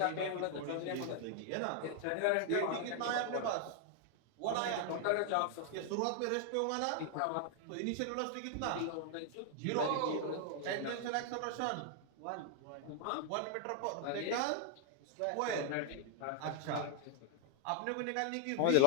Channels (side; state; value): both; different; correlation 0.00